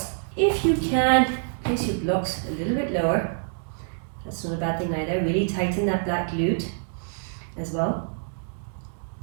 If you can, place your blocks a little bit lower. That's not a bad thing either. Really tighten that black glute as well,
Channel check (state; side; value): silent; left; digital silence